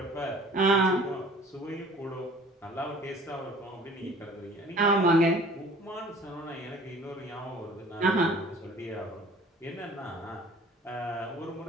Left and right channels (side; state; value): both; normal; correlation 0.49